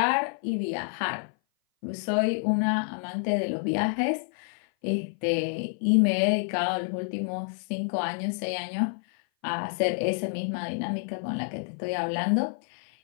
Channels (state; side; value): silent; right; 56 dB below the other